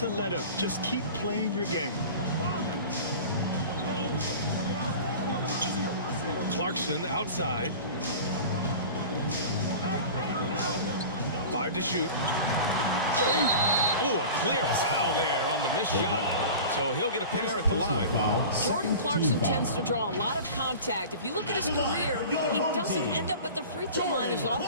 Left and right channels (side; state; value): both; inverted; correlation -0.36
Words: let up. Just keep playing your game. Clarkson outside. 5 to shoot. Oh, a clear foul there on the missed shot. So he'll get a pair at the line. Jordan Clarkson tends to draw a lot of contact. If you look at his career, he doesn't end up at the free throw line as